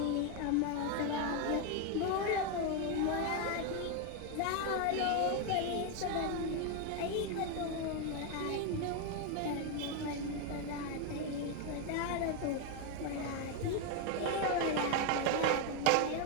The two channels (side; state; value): both; different; correlation 0.01